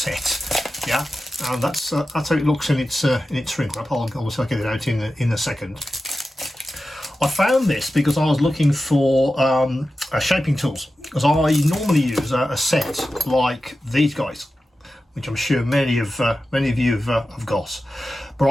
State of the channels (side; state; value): both; normal; correlation 0.93